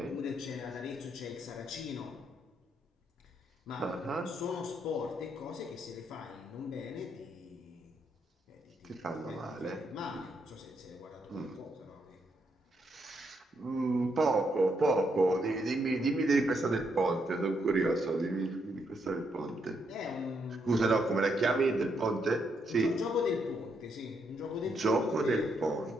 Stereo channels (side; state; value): both; normal; correlation 0.77